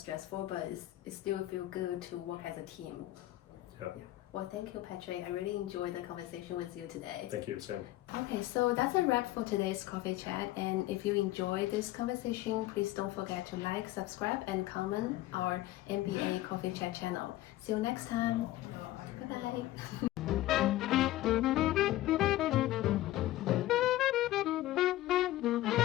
but it still feels good to work as a team. Yeah. Well, thank you, Patrick. I really enjoyed the conversation with you today. Thank you, Sam. Okay, so that's a wrap for today's coffee chat. And if you enjoyed this conversation, please don't forget to like, subscribe, and comment our MBA Coffee Chat channel. See you next time. Bye-bye.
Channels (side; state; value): right; quieter; 15.8 dB